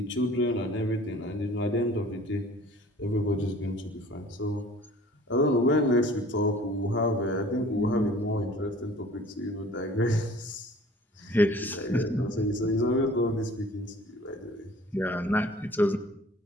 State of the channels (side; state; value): both; normal; correlation 0.49